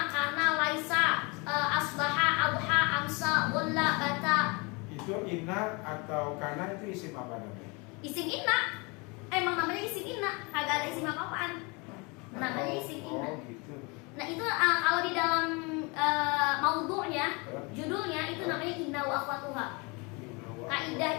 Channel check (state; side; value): quieter; right; 28.9 dB